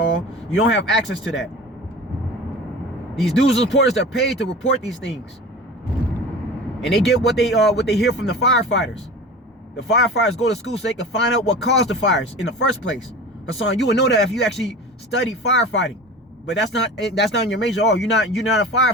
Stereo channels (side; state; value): both; normal; correlation 0.36